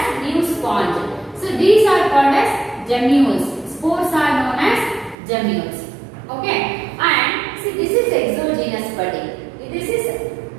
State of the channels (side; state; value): left; drops out; at 5.2 s